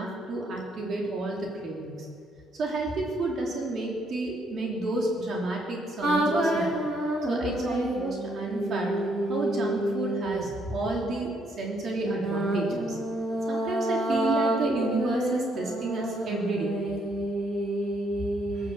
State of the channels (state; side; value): normal; both; correlation 0.71